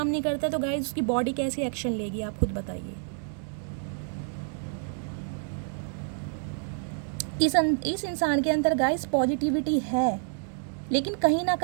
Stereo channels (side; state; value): left; silent; 59 dB below the other